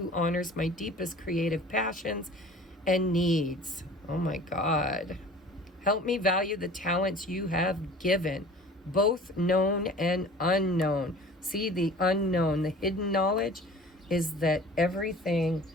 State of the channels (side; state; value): both; normal; correlation 0.45